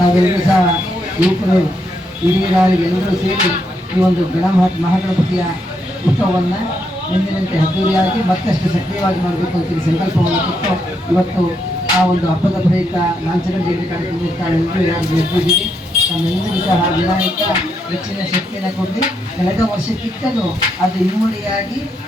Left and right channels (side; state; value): both; normal; correlation 0.79